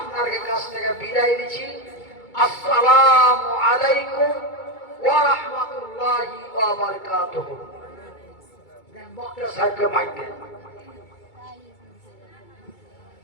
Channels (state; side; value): late; right; 2.3 ms